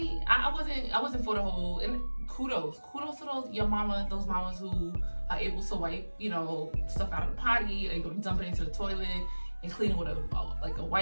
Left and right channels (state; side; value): inverted; both; correlation -1.00